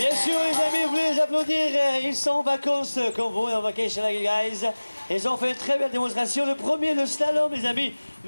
sûr, les amis, vous voulez les applaudir. Ils sont en vacances comme vous, en vacation like you guys. Ils ont fait une très belle démonstration. Le premier, le slalom, les amis,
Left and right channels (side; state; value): both; inverted; correlation -1.00